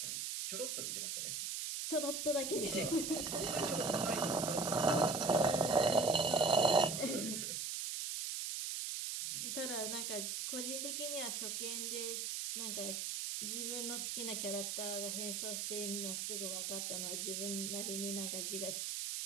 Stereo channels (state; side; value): noise; right; hiss, 2 dB below the sound